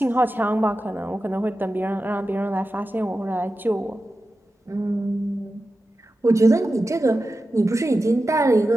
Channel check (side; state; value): both; normal; correlation 0.93